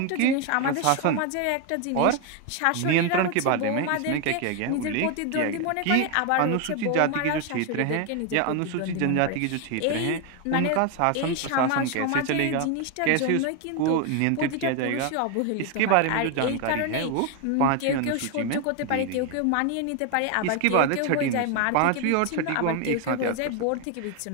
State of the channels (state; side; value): different; both; correlation 0.01